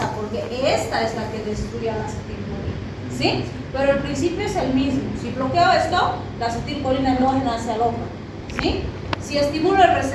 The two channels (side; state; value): both; identical; correlation 1.00